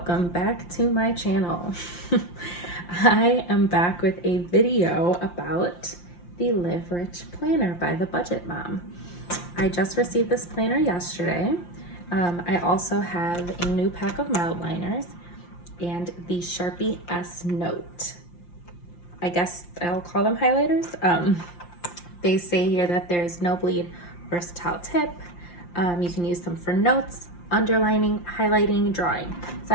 back to my channel. I am back with a video about the Live Rich Planner by the Budget Mom. I just received this planner yesterday. I also have a new pack of Mildliners and the Sharpie S Note. I guess I'll call them highlighters. They say here that there's no bleed versatile tip. You can use them for notes, underlining, highlighting, drawing. So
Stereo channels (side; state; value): right; late; 5.7 ms